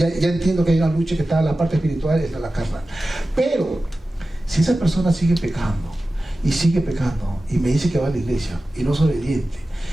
entiendo que hay una lucha que está en la parte espiritual y está en la carnal. Pero si esa persona sigue pecando y me dice que va a la iglesia y no es obediente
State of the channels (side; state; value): both; normal; correlation 0.95